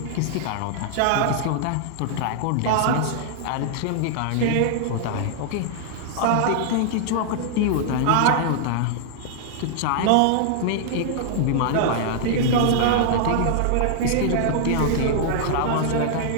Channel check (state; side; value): different; both; correlation -0.01